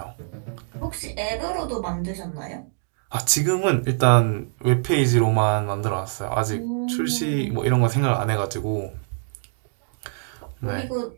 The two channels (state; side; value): silent; left; digital silence